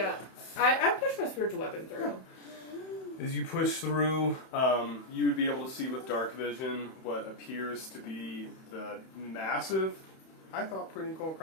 I pushed my spiritual weapon through. As you push through, you would be able to see with dark vision what appears to be the massive, I thought pretty cool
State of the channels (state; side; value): late; right; 31 ms